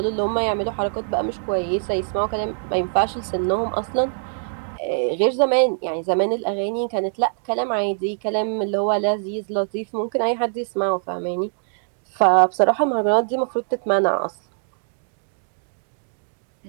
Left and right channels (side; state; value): left; silent; digital silence